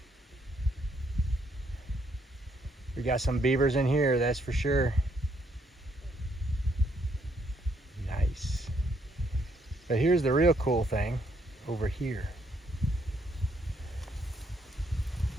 We got some beavers in here, that's for sure. Nice. But here's the real cool thing over here.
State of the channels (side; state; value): both; normal; correlation 0.72